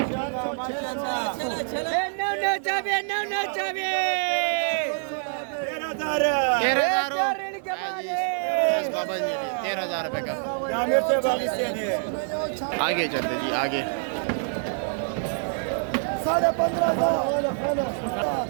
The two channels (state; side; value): silent; left; digital silence